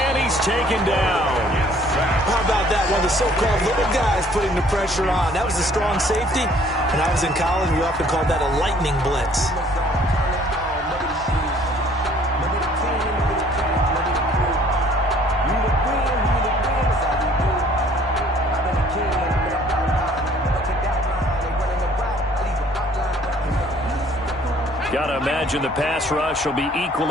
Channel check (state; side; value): normal; both; correlation 0.58